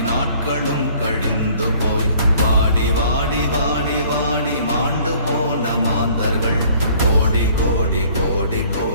நாட்களும் கழிந்து போய் வாடி வாடி வாடி வாடி மாண்டு போன மாந்தர்கள் கோடி கோடி கோடி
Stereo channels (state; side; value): inverted; both; correlation -0.56